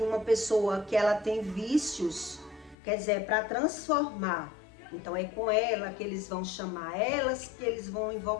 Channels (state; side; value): drops out; right; at 2.8 s